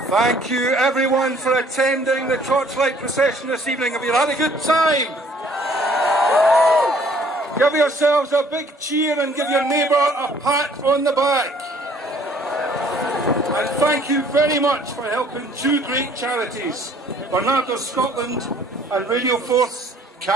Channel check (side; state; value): both; normal; correlation 0.58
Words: Thank you everyone for attending the Torchlight Procession this evening. Have you had a good time? Give yourselves a big cheer and give your neighbour a pat on the back. And thank you very much for helping two great charities, Bernardo Scotland and Radio 4's